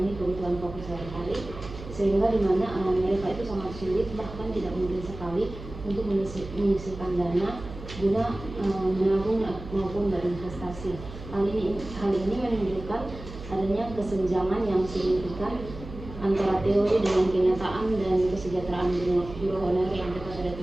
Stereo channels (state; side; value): noise; right; hum, 12 dB below the sound